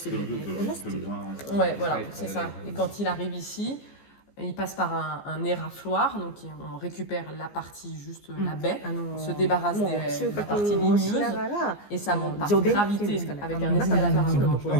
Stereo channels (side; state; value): right; late; 14 ms